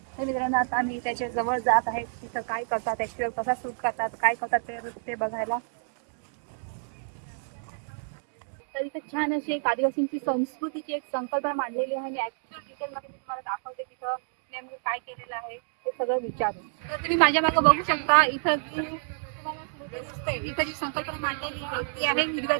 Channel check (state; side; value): silent; left; digital silence